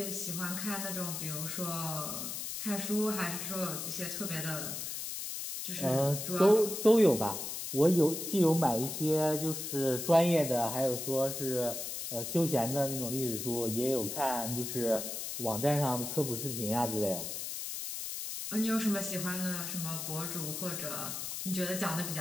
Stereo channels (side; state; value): left; noise; hiss, 5 dB below the sound